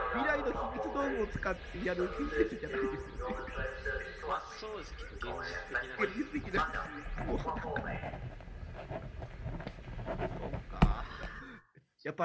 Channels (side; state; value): both; identical; correlation 1.00